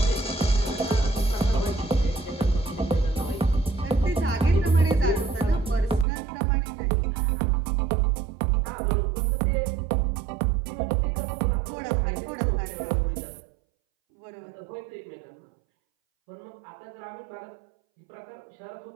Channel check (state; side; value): drops out; left; at 6.1 s